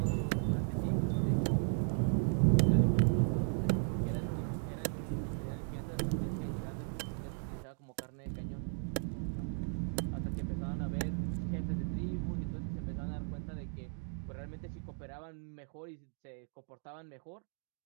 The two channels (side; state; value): left; silent; 54 dB below the other